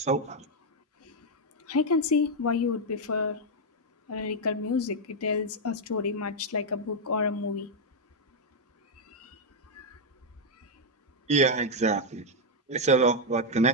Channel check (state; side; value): normal; both; correlation 0.00